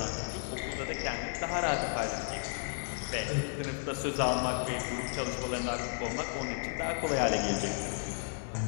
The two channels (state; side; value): silent; right; 55 dB below the other